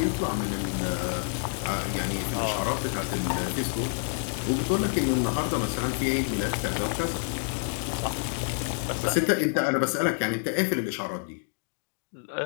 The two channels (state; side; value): silent; right; digital silence